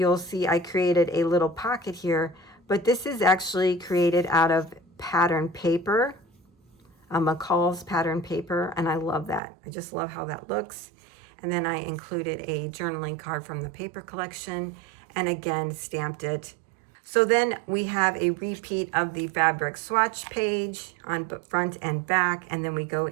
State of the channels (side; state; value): left; drops out; at 9.4 s